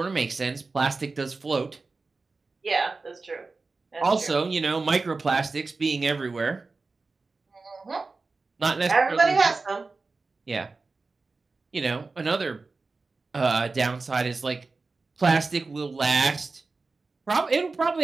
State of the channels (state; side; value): quieter; left; 3.9 dB